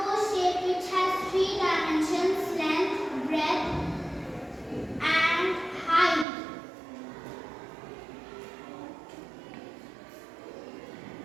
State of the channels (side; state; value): left; drops out; at 6.2 s